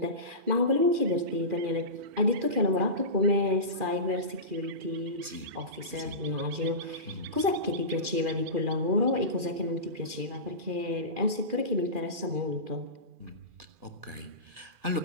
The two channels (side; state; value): left; late; 2.4 ms